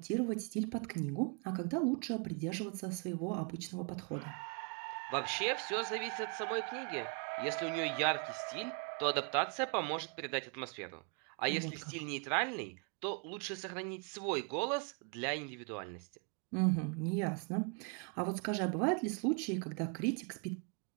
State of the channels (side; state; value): left; quieter; 37.3 dB